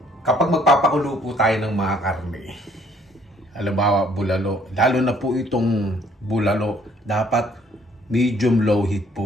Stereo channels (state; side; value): normal; both; correlation 0.62